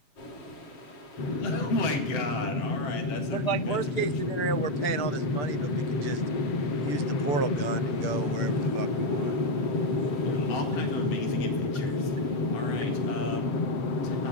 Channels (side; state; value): right; late; 6.8 ms